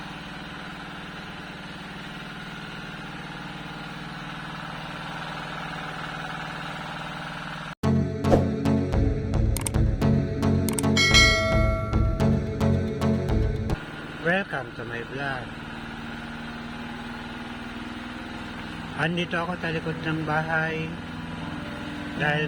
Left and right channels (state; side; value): identical; both; correlation 1.00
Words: Welcome to my vlog. Andito ako sa likod ng bahay